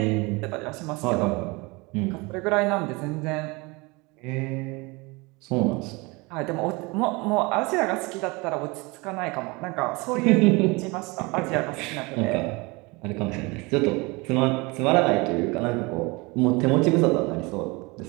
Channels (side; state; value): left; quieter; 25.8 dB